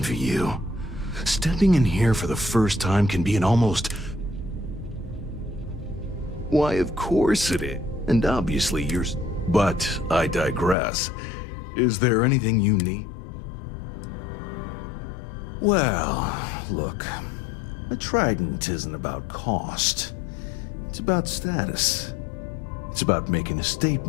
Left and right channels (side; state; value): right; drops out; at 10.8 s